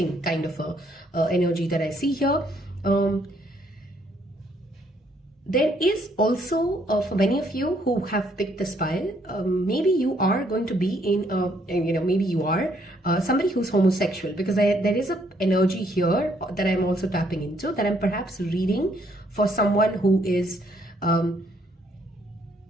kind of a energy that I see here. There is also, for many of you who have picked this pile, maybe you are going to be in, maybe you are somebody who's homosexual, because there is an energy here that I'm also tapping into, that I'm perhaps reading for someone who is,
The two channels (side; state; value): both; normal; correlation 0.69